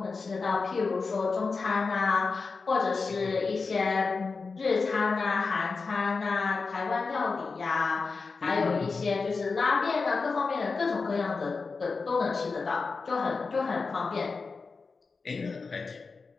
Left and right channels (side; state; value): right; quieter; 4.4 dB